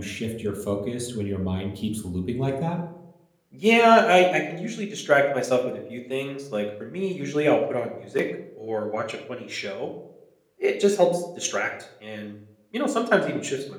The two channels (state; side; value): identical; both; correlation 1.00